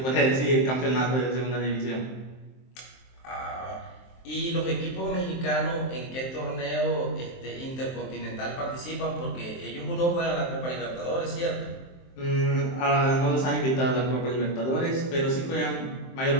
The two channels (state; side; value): late; right; 23 ms